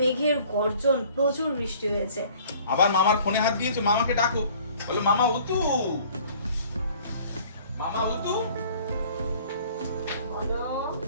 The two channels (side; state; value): both; inverted; correlation -0.53